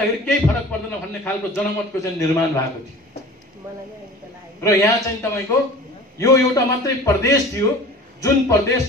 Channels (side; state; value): both; normal; correlation 0.41